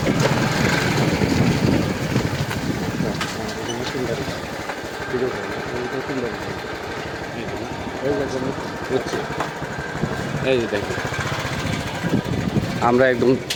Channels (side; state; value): both; identical; correlation 1.00